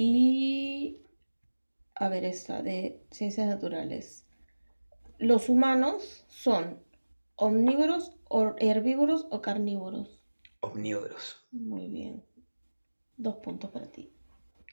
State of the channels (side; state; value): both; inverted; correlation -1.00